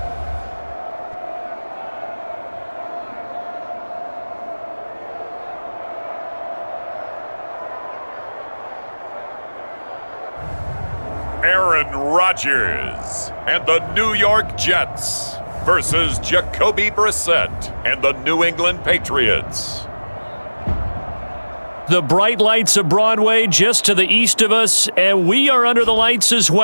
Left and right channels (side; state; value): both; inverted; correlation -1.00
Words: Aaron Rodgers and the New York Jets versus Jacoby Brissett and the New England Patriots. The bright lights of Broadway just to the east of us, and we are under the lights as